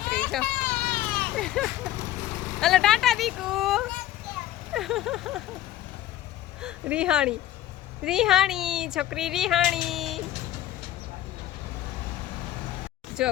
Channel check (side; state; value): right; quieter; 13.5 dB